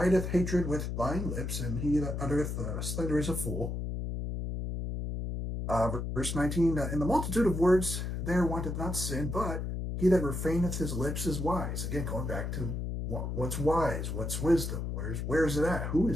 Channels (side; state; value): left; noise; hum, 3 dB below the sound